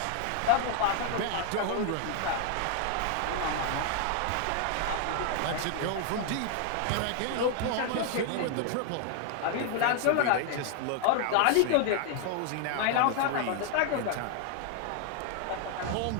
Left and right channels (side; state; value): both; different; correlation 0.00